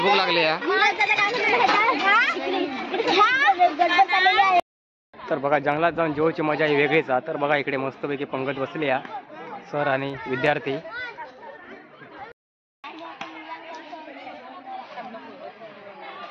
लागली आहे. तर बघा जंगलात जाऊन जेवची मजा ही वेगळीच आहे. तर बघा इकडे मस्तपैकी पंगत बसली आहे सर आणि विद्यार्थी.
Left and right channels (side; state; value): both; identical; correlation 1.00